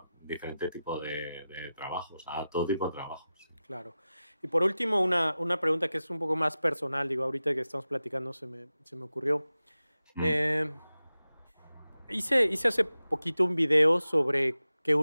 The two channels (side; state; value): both; inverted; correlation -0.94